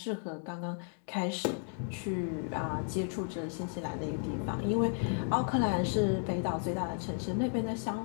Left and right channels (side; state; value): right; silent; 55 dB below the other